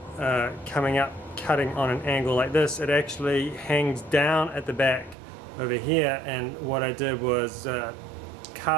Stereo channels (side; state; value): left; drops out; at 5.2 s